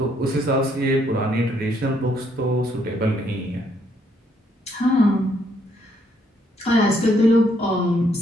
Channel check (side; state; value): both; normal; correlation 0.70